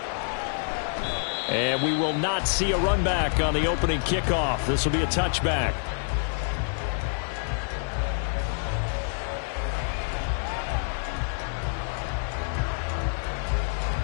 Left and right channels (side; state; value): right; silent; 60 dB below the other